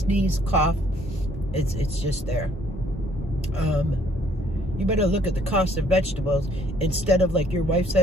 cough. It's just there. You better look at the cost of vegetables instead of, like your wife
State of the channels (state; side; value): normal; both; correlation 0.62